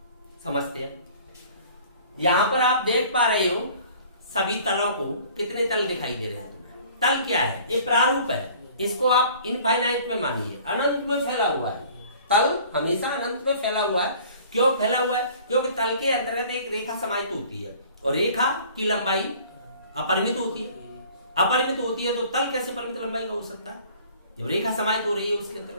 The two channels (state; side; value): inverted; both; correlation -0.50